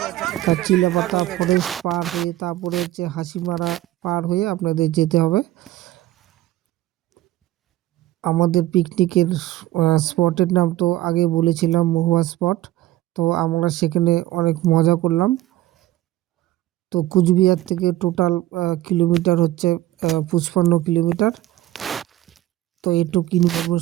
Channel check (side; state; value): left; quieter; 15.4 dB